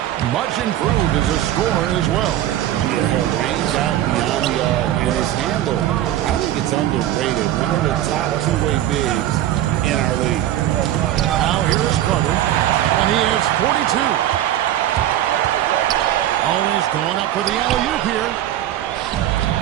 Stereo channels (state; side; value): quieter; left; 12.7 dB